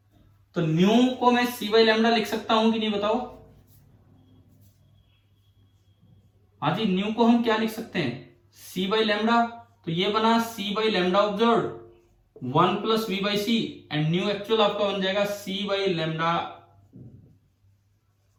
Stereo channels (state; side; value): identical; both; correlation 1.00